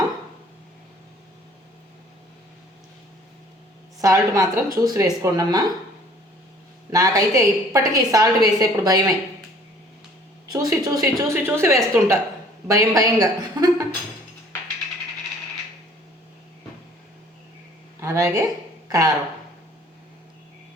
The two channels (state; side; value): normal; both; correlation 0.55